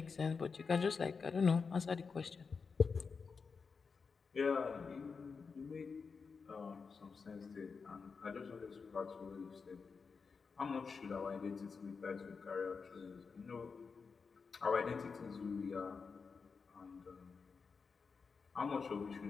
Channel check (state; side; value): quieter; right; 5.2 dB